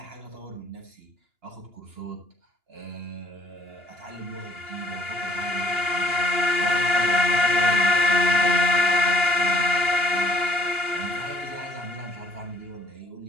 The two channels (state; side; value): late; left; 2.9 ms